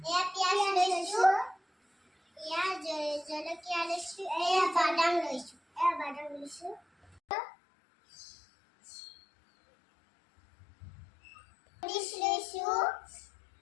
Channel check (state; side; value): drops out; right; at 7.2 s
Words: এয়া পিঁয়াজ লৈছোঁ, এয়া জলকীয়া লৈছোঁ, এয়া বাদাম লৈছোঁ, লৈছোঁ,